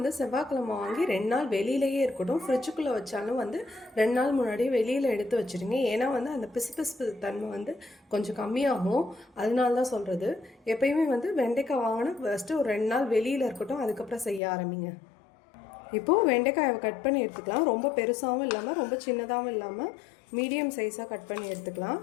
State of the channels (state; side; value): drops out; right; at 14.4 s